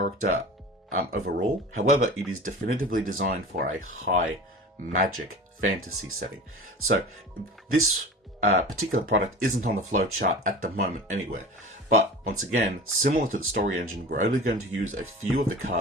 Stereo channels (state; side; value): normal; both; correlation 0.36